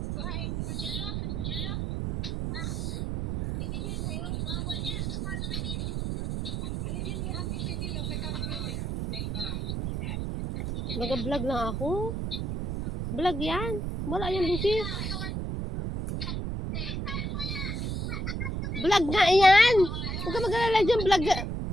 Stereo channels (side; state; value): right; noise; rumble, 2 dB below the sound